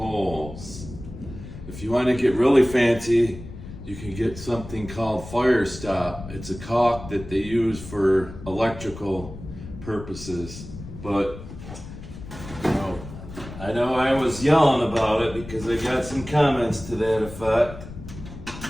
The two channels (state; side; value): noise; left; rumble, 13 dB below the sound